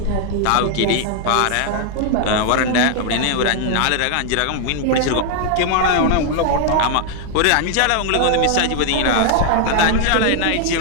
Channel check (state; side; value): different; both; correlation 0.00